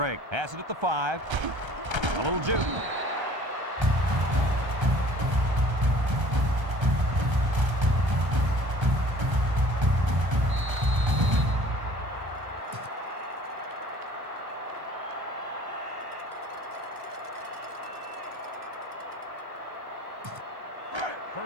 has it at the 5. A little juke.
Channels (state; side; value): late; left; 1.3 ms